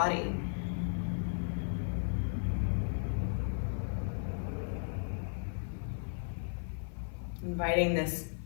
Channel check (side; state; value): right; silent; 54 dB below the other